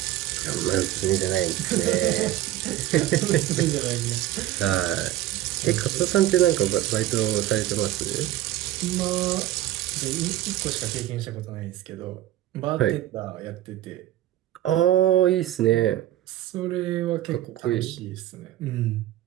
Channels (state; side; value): quieter; left; 13.9 dB